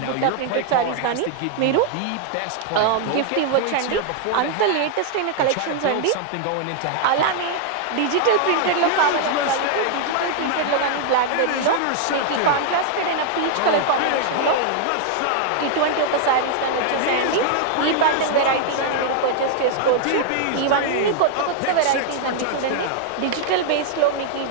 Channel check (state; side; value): different; both; correlation -0.01